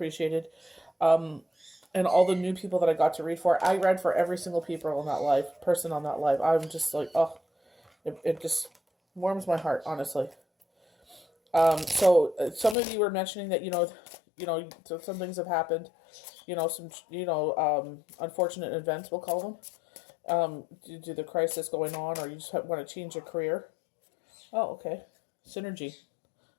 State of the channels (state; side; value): drops out; right; at 12.8 s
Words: And all the new people that I got to read for. I read for every single person on that live. I'm just like, oh, it just warms my heart, honestly. So some of you were mentioning that some things have happened, unfortunate events, we'll call them, due to the crisis going on, or you just want to change your career. Oh, okay, synergy.